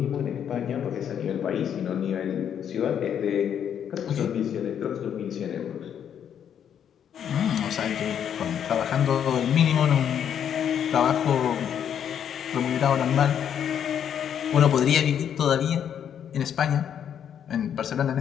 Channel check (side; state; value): right; quieter; 8.9 dB